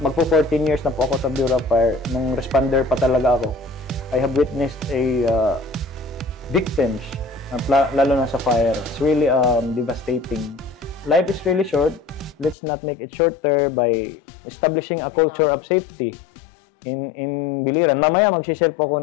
Magpo 14 years na po ako sa Bureau of Fire. Nung responder pa talaga ako. I have witnessed victims, lalo na sa fire. It's really devastating. Life is really short. Let's not make it shorter by establishing a culture of safety in Biliran. Mamaya mag-share po ako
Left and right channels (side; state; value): right; drops out; at 12.6 s